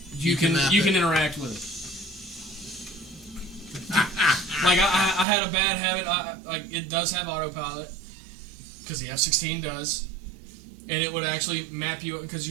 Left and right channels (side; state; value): left; drops out; at 5.2 s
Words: you can interact with it. Like I had a bad habit. Like it does have autopilot because the F-16 does, and it would actually map you because